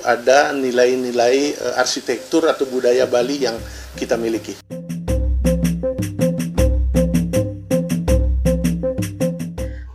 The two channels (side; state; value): both; identical; correlation 1.00